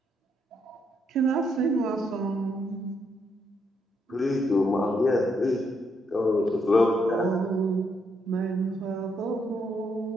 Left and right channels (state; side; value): normal; both; correlation 0.76